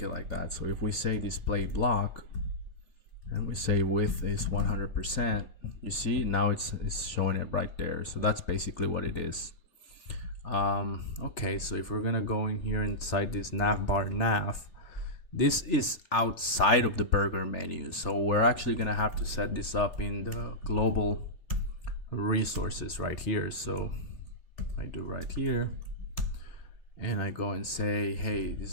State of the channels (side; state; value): right; late; 3.4 ms